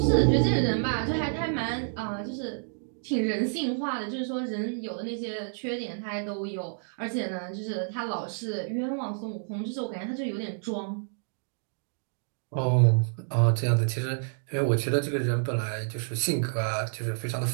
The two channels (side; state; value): left; silent; digital silence